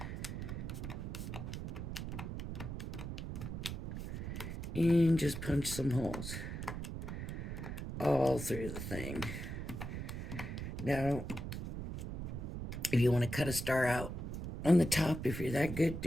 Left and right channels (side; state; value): right; noise; rumble, 5 dB below the sound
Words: And just punch some holes all through the thing. Now, if you want to cut a star out on the top, if you're that good,